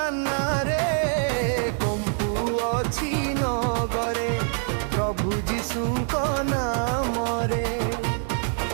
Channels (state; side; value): silent; left; 56 dB below the other